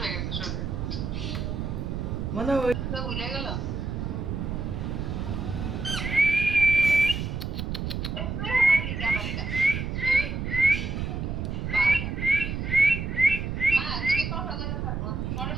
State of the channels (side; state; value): right; noise; rumble, 3 dB below the sound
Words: হয়ে গেছে শরীর মানে ওই তো ভুলে গেল মা তুমি কথা বলে থাকো পরে